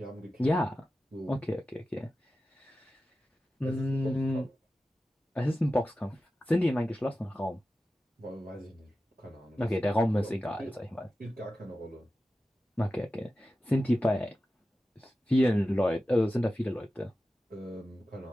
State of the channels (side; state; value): both; normal; correlation 0.93